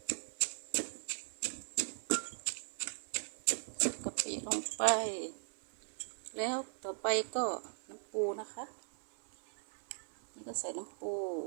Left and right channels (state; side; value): silent; left; 52 dB below the other